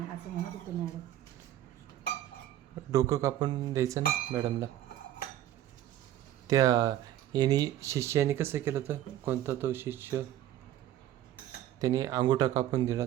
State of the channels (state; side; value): quieter; left; 12.7 dB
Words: असं म्हणत होतं मॅडम. डोकं कापून द्यायचं ना मॅडमला. त्या यांनी शिष्याने कसं केलं तर, कोणता तो शिष्य, त्याने अंगुठा कापून दिला